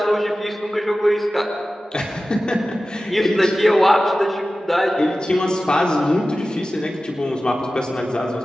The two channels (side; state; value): both; normal; correlation 0.95